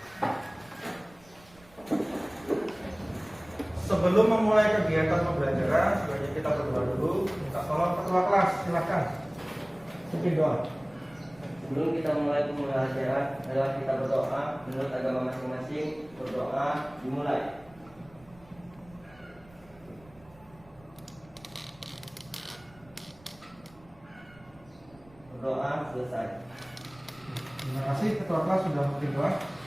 Sebelum memulai kegiatan pembelajaran, sebaiknya kita berdoa dulu. Minta tolong ketua kelas, silakan. Pimpin doa. Sebelum kita mulai pembelajaran, adalah kita berdoa menurut agama masing-masing. Berdoa dimulai. Berdoa selesai. Terima kasih ketua kelas sudah memberi doa.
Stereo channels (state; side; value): noise; right; rumble, 26 dB below the sound